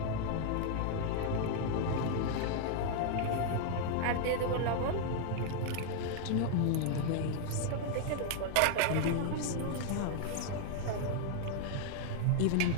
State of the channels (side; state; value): both; different; correlation 0.00